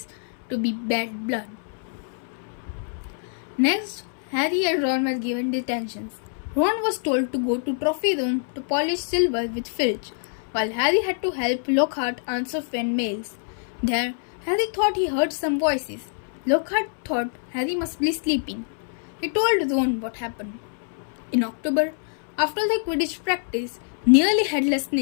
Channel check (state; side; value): silent; right; 60 dB below the other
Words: to be bad blood. Next, Harry and Ron were given detentions. Ron was told to go to Trophy Room to polish silver with Filch, while Harry had to help Lockhart answer fan mails. There, Harry thought he heard some voices. Lockhart thought Harry must be sleeping. He told Ron what happened. In October, after the Quidditch practice, Nearly Headless